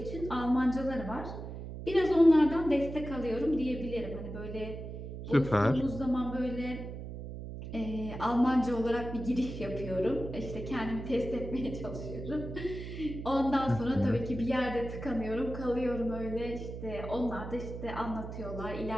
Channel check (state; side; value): noise; right; hum, 9 dB below the sound